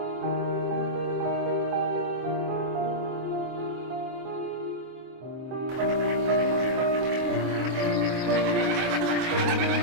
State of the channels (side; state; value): left; late; 24 ms